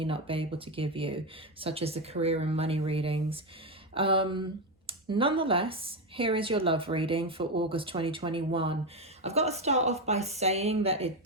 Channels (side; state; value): both; normal; correlation 0.10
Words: not be able to give you, such as the career and money readings. Nonetheless, here is your love reading for August 2021. I've got to start off by saying that it